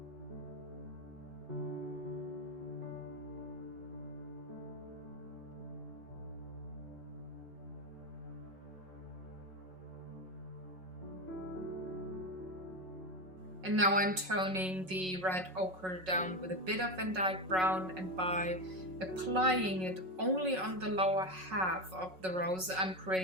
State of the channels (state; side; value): late; left; 5.4 ms